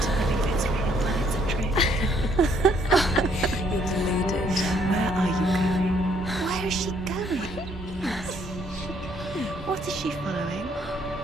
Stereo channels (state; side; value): normal; both; correlation 0.67